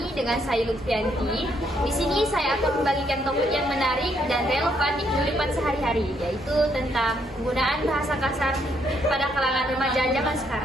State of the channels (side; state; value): both; normal; correlation 0.72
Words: dengan saya Lutfianti. Di sini saya akan membagikan topik yang menarik dan relevan di kehidupan sehari-hari, yaitu tentang penggunaan bahasa kasar pada kalangan remaja zaman